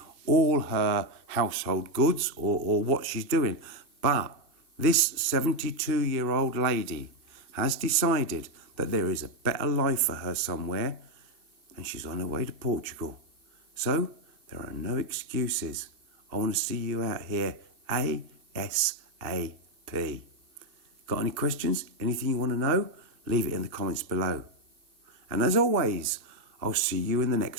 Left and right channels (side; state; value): left; late; 2.6 ms